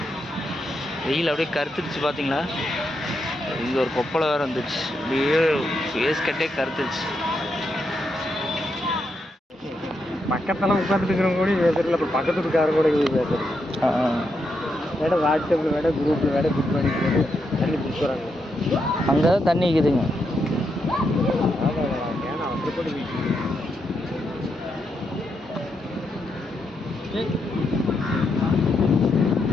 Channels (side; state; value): both; normal; correlation 0.82